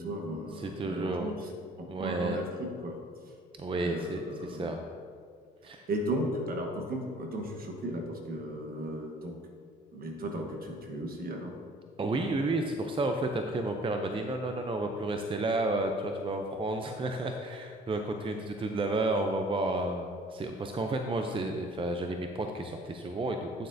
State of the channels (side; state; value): both; normal; correlation 0.54